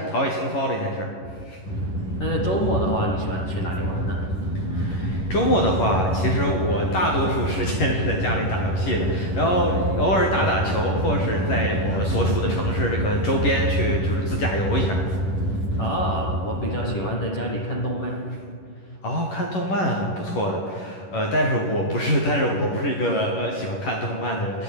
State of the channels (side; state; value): right; late; 11 ms